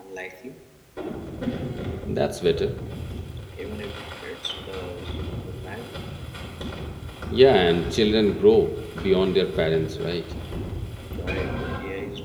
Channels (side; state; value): both; identical; correlation 1.00